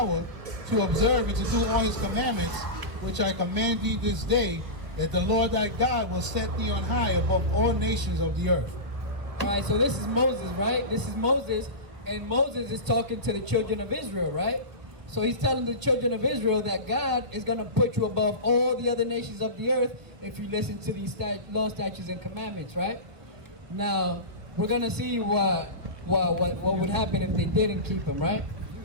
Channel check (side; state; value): left; late; 1.5 ms